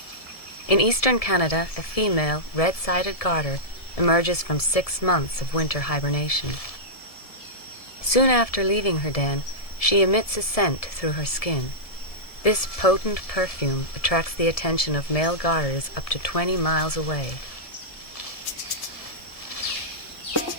In eastern Canada, a female red-sided garter emerges from 6 months of winter hibernation. Soon after leaving her den, she emits a scent through her skin. This potent perfume attracts the attention of male garters up to 20 miles away.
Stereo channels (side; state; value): right; late; 1.7 ms